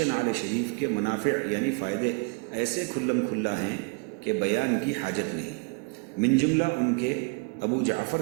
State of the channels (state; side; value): quieter; left; 33.5 dB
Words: نعل شریف کے منافع یعنی فائدے ایسے کھلم کھلا ہیں کہ بیان کی حاجت نہیں۔ من جملہ ان کے ابو جعفر